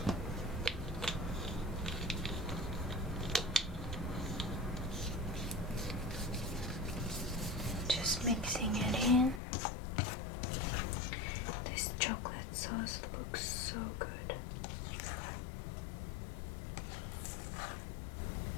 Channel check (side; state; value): right; drops out; at 9.4 s